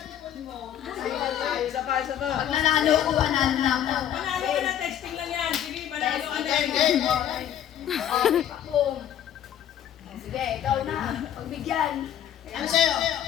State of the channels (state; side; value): quieter; right; 10.5 dB